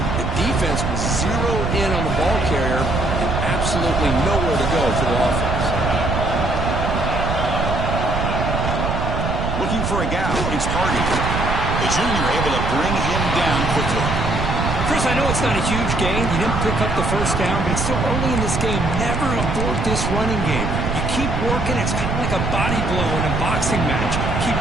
The defense was zeroed in on the ball carrier and absolutely nowhere to go for the offense. Looking for a gap. It's Hardy. The junior able to bring him down quickly. Chris, I know it's not a huge gain. You didn't pick up the first down, but it's still early in this game. Never abort this running game. You keep working. It's kind of like a body blow in a boxing match. Keep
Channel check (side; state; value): right; noise; rumble, 1 dB below the sound